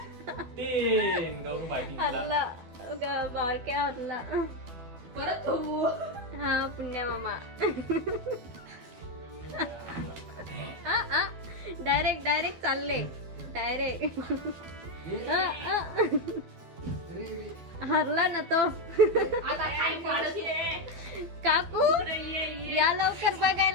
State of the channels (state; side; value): late; left; 12 ms